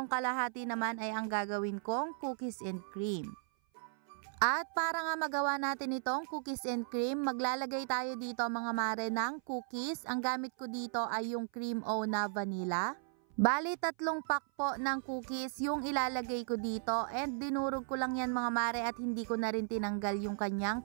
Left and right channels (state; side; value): silent; left; 54 dB below the other